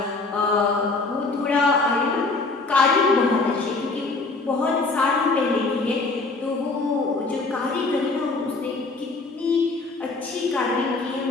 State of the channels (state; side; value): quieter; right; 3.6 dB